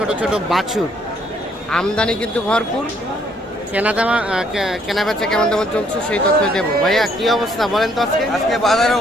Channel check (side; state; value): both; normal; correlation 0.67